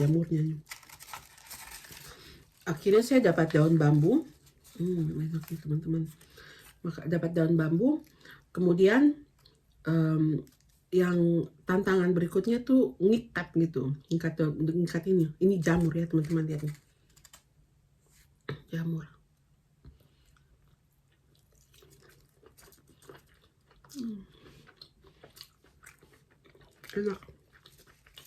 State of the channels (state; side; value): identical; both; correlation 1.00